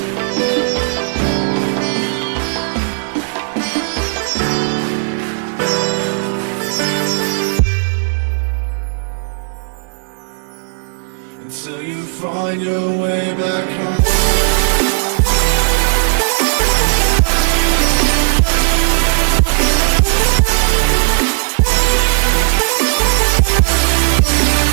Until you find your way back home.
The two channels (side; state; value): left; silent; 70 dB below the other